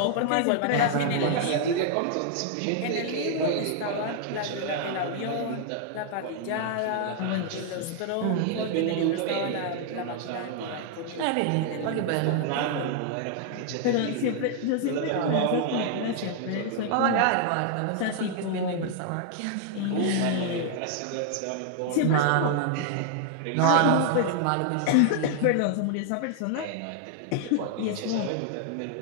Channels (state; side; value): different; both; correlation 0.00